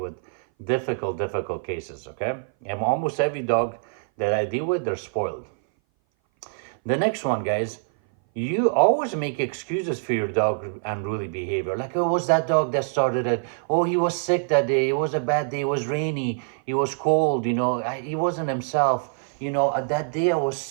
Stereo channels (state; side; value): silent; left; 58 dB below the other